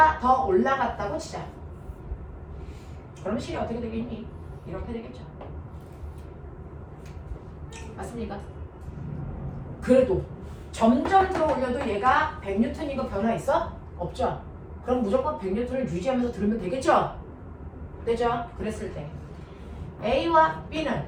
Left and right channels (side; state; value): both; identical; correlation 1.00